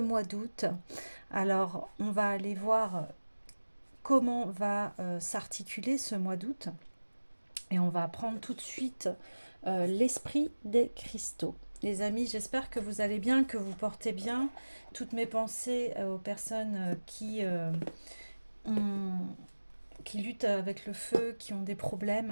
mois d'août. Alors on va aller voir comment va s'articuler ce mois d'août et on va prendre tout de suite l'esprit des cristaux. Les amis, j'espère que vous allez bien, que vous portez bien. Toutes mes pensées aux personnes qui luttent avec le feu, qui ont des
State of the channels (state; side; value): inverted; both; correlation -1.00